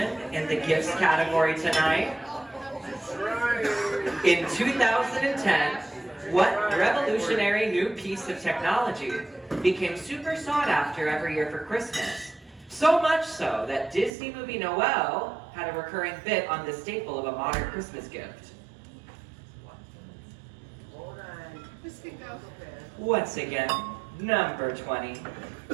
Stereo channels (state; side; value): drops out; left; at 14.1 s